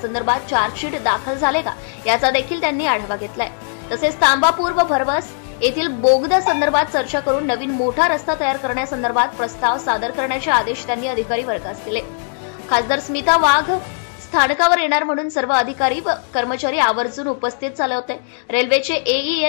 चार्जशीट दाखल झाले का याचा देखील त्यांनी आढावा घेतलाय. तसेच तांबापूर व भरवस येथील बोगदा संदर्भात चर्चा करून नवीन मोठा रस्ता तयार करण्यासंदर्भात प्रस्ताव सादर करण्याचे आदेश त्यांनी अधिकारी वर्गास दिले. खासदार स्मिता वाघ स्थानकावर येणार म्हणून सर्व अधिकारी व कर्मचारी आवर्जून उपस्थित झाले होते. रेल्वेचे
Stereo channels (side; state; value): right; silent; digital silence